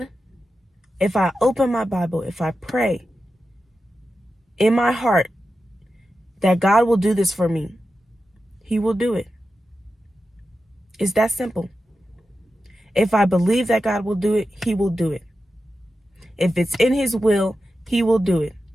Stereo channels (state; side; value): normal; both; correlation 0.91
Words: if I open my Bible, if I pray in my heart that God will do this for me, he will do it. It's that simple. If I believe that God will do it, he will do it. If it's in his will, he will do it.